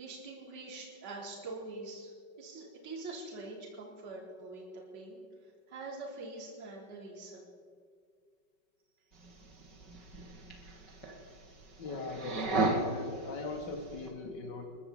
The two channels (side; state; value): right; late; 5.3 ms